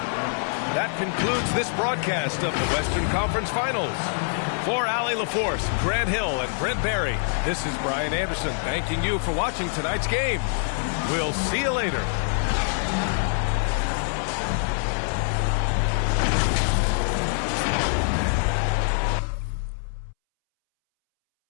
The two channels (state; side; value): silent; right; 62 dB below the other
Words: That concludes this broadcast of the Western Conference Finals. For Allie LaForce, Grant Hill, and Brent Barry, this is Brian Anderson thanking you for watching tonight's game. We'll see you later.